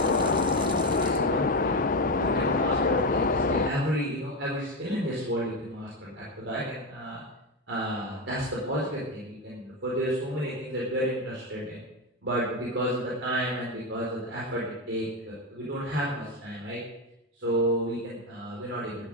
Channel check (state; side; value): normal; both; correlation 0.12